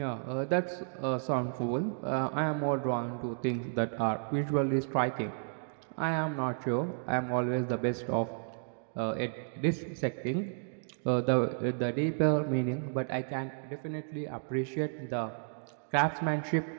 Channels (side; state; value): left; silent; digital silence